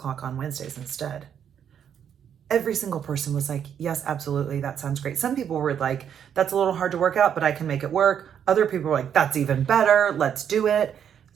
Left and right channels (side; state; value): left; quieter; 8.6 dB